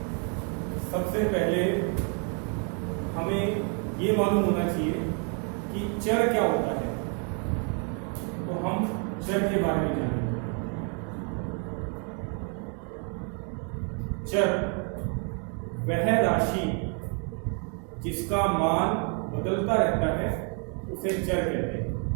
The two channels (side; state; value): left; quieter; 39.9 dB